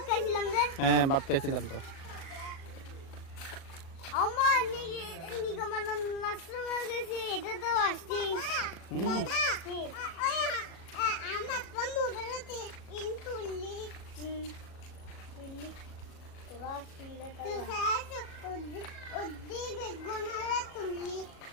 হ্যাঁ, ভাত খাইছিলাম তো।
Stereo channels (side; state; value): right; late; 37 ms